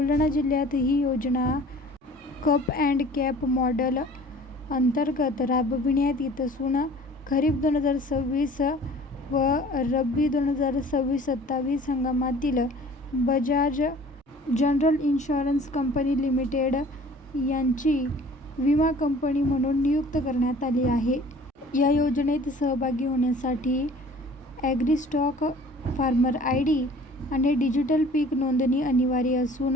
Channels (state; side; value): normal; both; correlation 0.48